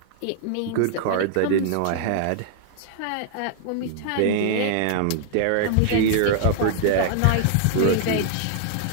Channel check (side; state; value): both; different; correlation -0.01